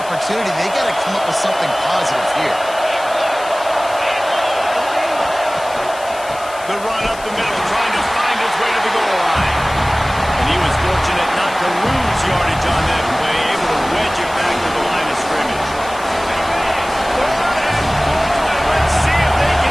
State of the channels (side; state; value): left; noise; hiss, 17 dB below the sound